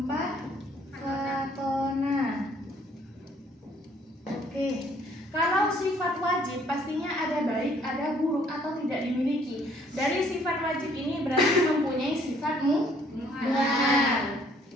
fatona. Oke. Kalau sifat wajib pastinya ada baik, ada buruk atau tidak dimiliki. Dari sifat wajib ini berarti mempunyai sifat muhal.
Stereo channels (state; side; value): normal; both; correlation 0.62